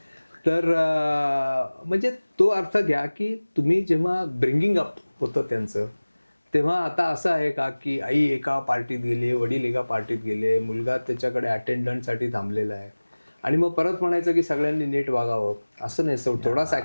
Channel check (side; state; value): both; inverted; correlation -1.00